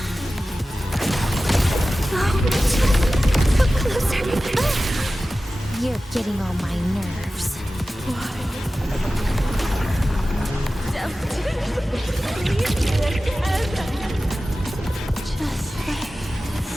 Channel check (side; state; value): both; normal; correlation 0.95